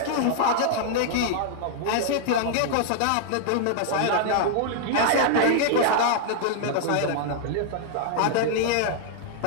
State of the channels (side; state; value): both; different; correlation -0.01